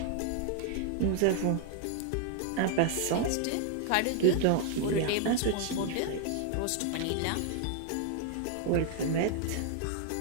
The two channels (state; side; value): different; both; correlation 0.00